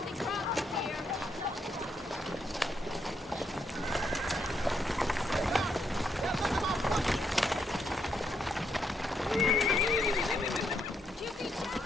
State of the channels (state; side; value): normal; both; correlation 0.77